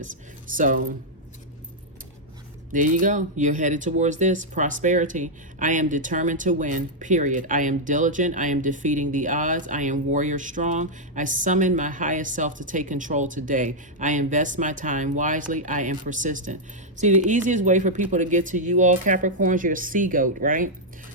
So there you go. You're headed towards this prosperity. I am determined to win, period. I am diligent. I am defeating the odds. I am warrior strong. I summon my highest self to take control today. I invest my time wisely. I am persistent. See, the easiest way for people to get to you all, Capricorns, you're a sea goat, right?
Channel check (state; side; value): normal; both; correlation -0.04